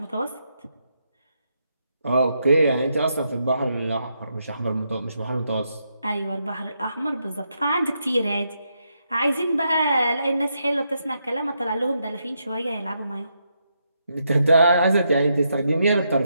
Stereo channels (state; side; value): inverted; both; correlation -0.81